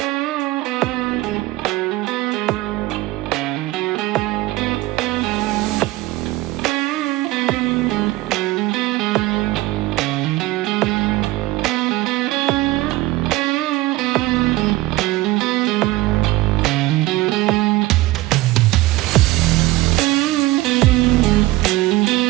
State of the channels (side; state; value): left; quieter; 18.6 dB